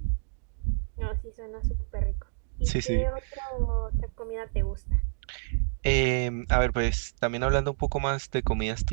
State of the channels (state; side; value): silent; left; digital silence